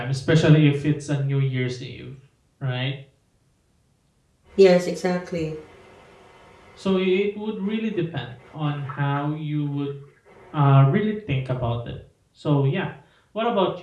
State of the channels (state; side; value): identical; both; correlation 1.00